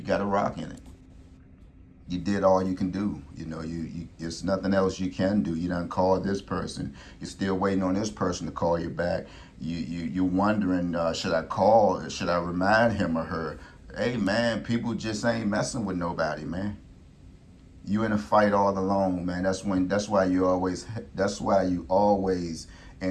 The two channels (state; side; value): identical; both; correlation 1.00